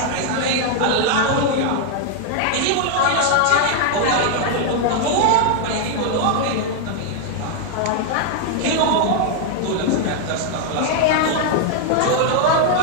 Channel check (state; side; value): different; both; correlation 0.00